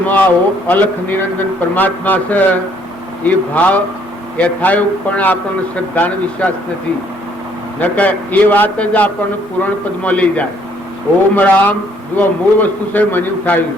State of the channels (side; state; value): both; normal; correlation 0.64